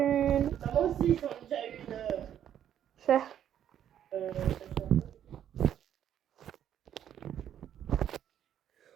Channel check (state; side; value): quieter; left; 10.2 dB